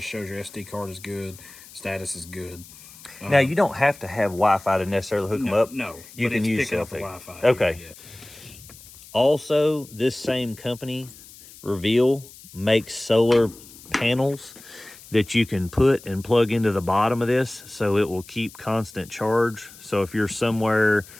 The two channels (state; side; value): noise; left; hiss, 20 dB below the sound